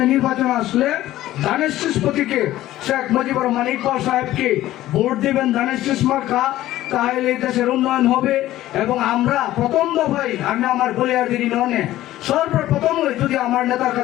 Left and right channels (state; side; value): quieter; right; 14.7 dB